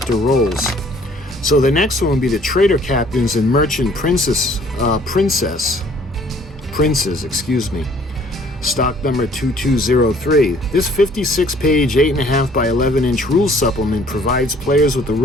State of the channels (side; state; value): both; normal; correlation 0.57